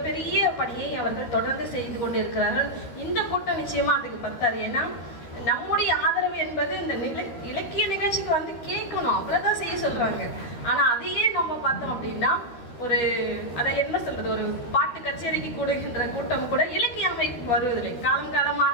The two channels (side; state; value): right; late; 13 ms